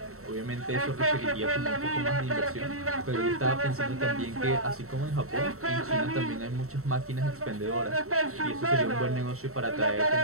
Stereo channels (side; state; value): left; late; 0.63 ms